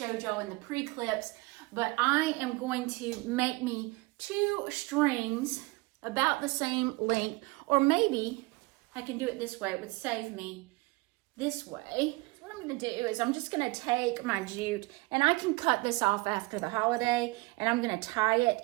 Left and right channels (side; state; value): left; quieter; 24.0 dB